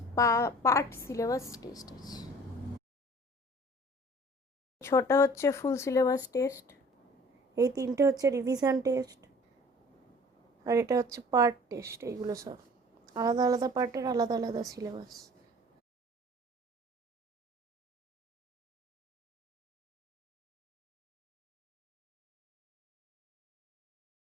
সিলেবাস টেস্ট আছে। 6টা হচ্ছে ফুল সিলেবাস টেস্ট, এই 3টে হচ্ছে রিভিশন টেস্ট, আর এটা হচ্ছে পার্ট টেস্ট। এইগুলো সব আলাদা আলাদা পার্টের আলাদা আলাদা সিলেবাস।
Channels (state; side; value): normal; both; correlation 0.48